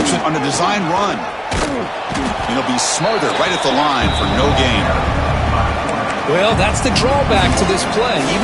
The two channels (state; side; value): identical; both; correlation 1.00